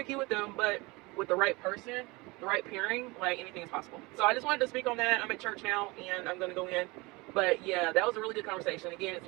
with them, but with the right person, the right pairing, like, anything is possible. So I just wanted to speak on that. I'm at church now and I'm going to go in. But yeah, that was a really good conversation. Again,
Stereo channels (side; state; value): left; quieter; 24.4 dB